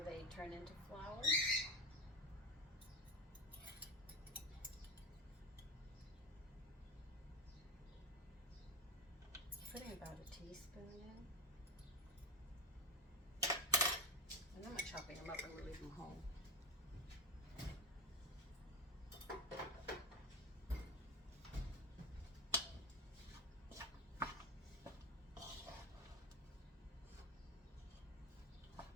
they turn into flowers. Putting about a teaspoon in. And I'm not chopping them up, I'm going to leave them whole.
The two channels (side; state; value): both; normal; correlation 0.16